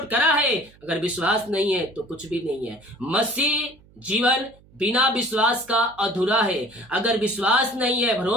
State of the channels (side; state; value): right; noise; hum, 27 dB below the sound